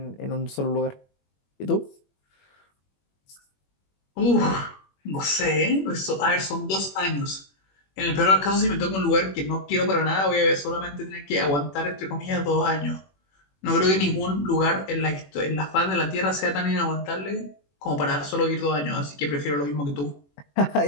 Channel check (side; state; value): right; late; 21 ms